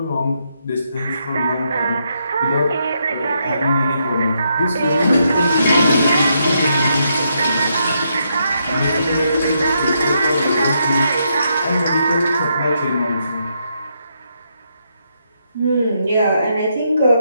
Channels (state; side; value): inverted; both; correlation -0.78